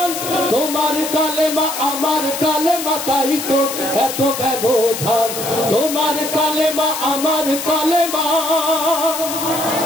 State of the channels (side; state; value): left; noise; hiss, 6 dB below the sound